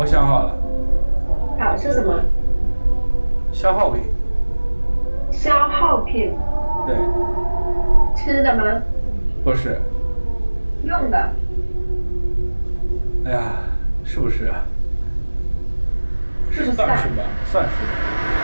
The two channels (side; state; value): both; inverted; correlation -1.00